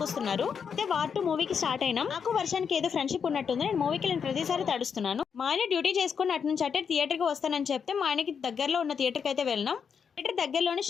అయితే వార్ 2 మూవీకి స్టార్ట్ అయినాం. నాకు వర్షానికి ఏదో ఫ్రెండ్షిప్ ఉన్నట్టుంది. నేను మూవీకి వెళ్ళిన ప్రతిసారి తడుస్తున్నాను. మా ఆయన డ్యూటీ చేసుకుని అటు నుంచి అటే థియేటర్కి వస్తానని చెప్తే మా ఆయనకి దగ్గరలో ఉన్న థియేటర్కి అయితే వెళ్ళినాం. థియేటర్ దగ్గరలోనే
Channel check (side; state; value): right; quieter; 6.7 dB